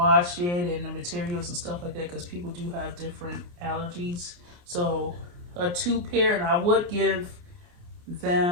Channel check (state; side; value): late; left; 29 ms